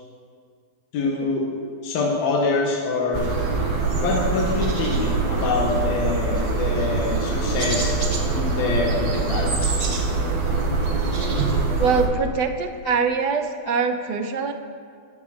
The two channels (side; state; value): right; late; 12 ms